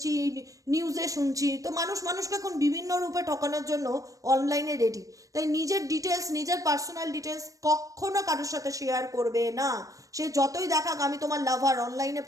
নিউজে শুনছি, তো মানুষ মানুষকে এখন বিভিন্ন রূপে ঠকানোর জন্য অনলাইনে রেডি। তাই নিজের ডিটেলস, নিজের পার্সোনাল ডিটেলস কখনো কারোর সাথে শেয়ার করবে না। সে যতই দেখাক আমি তোমার লাভার, অনলাইনে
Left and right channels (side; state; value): left; late; 0.16 ms